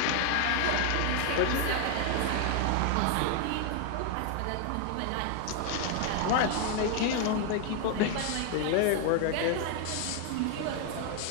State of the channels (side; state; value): both; different; correlation 0.00